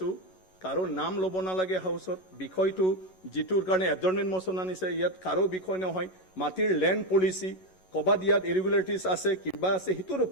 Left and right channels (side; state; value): right; late; 11 ms